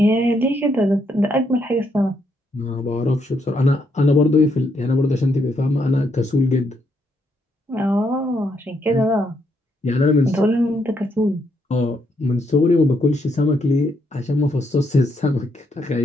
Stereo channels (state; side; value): normal; both; correlation 0.76